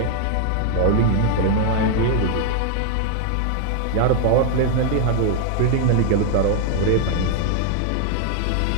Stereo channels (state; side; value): different; both; correlation 0.00